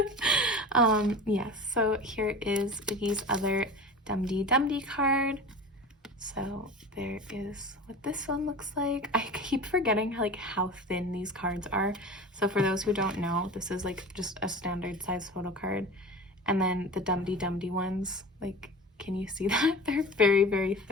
yes, so here is Oogie's other Dum-Dee card. So there is what this one looks like. I keep forgetting like how thin these cards are. So for those who don't know, this is like just a standard size photo card. And then the Dum-Dee ones, like, can you see that? They're very, very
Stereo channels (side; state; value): both; normal; correlation 0.34